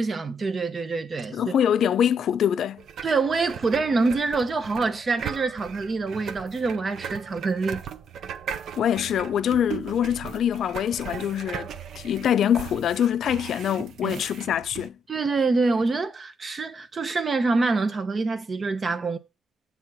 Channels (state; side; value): normal; both; correlation 0.74